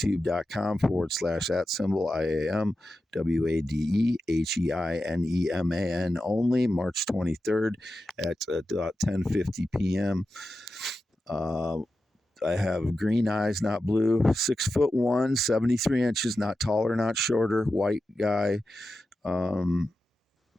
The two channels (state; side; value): normal; both; correlation 0.91